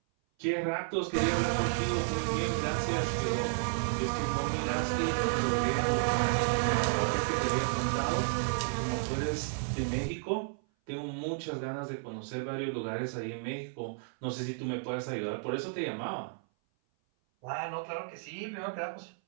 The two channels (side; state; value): left; silent; 56 dB below the other